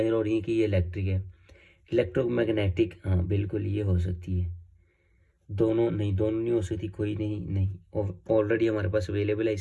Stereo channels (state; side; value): identical; both; correlation 1.00